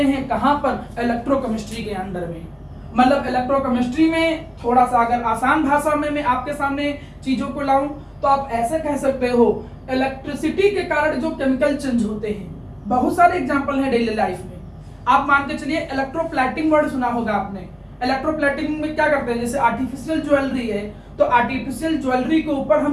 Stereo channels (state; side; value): identical; both; correlation 1.00